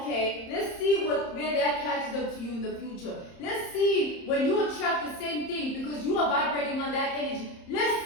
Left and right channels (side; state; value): right; late; 30 ms